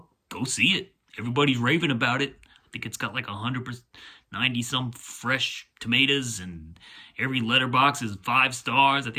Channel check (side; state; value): both; identical; correlation 1.00